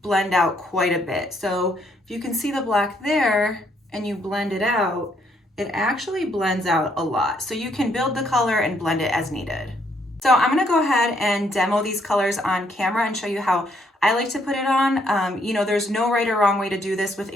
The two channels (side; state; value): both; normal; correlation 0.71